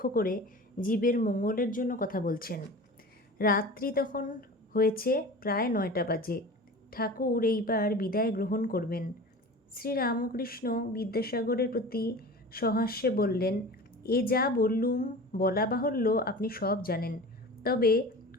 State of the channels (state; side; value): normal; both; correlation 0.36